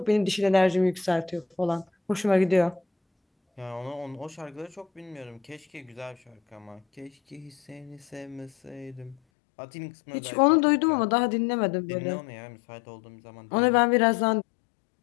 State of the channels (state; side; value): drops out; right; at 9.2 s